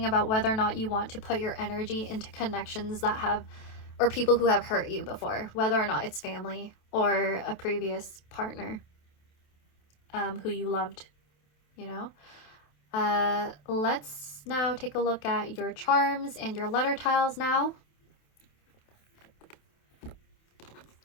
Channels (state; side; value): late; right; 27 ms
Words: about whether or not you want to put your energy into connections that have, or people who have hurt you before, whether or not it's family or a previous partner who you loved, you know. Let's now take a look at your charms and your letter tiles now.